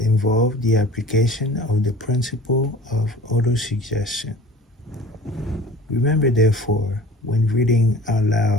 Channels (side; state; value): both; normal; correlation 0.43